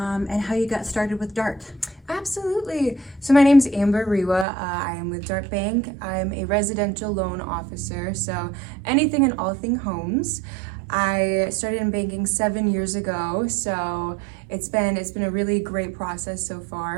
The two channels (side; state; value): left; drops out; at 4.5 s